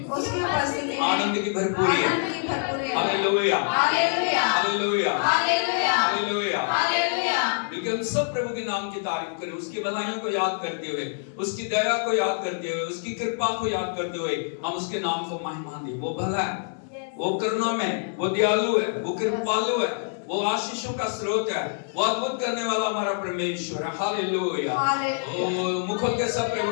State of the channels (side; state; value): right; silent; digital silence